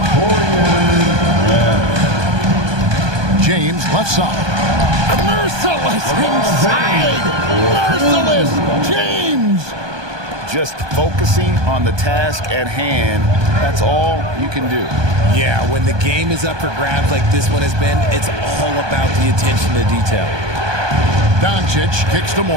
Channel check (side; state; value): left; late; 1.2 ms